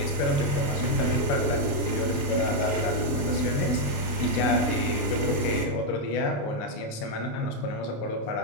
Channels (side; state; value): right; late; 27 ms